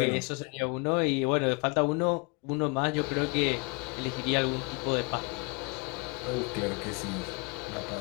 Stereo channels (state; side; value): quieter; right; 31.2 dB